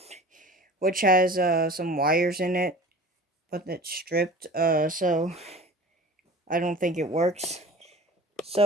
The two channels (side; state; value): both; normal; correlation 0.40